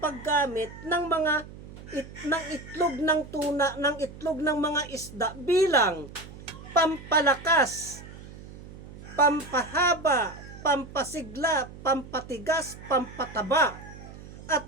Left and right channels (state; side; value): noise; right; hum, 16 dB below the sound